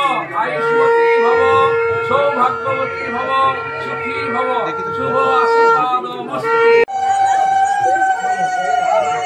আয়ুষ্মতী ভব সৌভাগ্যবতী ভব সুখী ভব শুভ আশীর্বাদ নমস্তে।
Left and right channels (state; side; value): identical; both; correlation 1.00